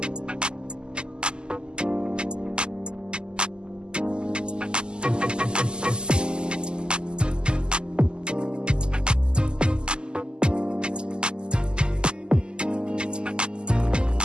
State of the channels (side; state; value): left; late; 0.048 ms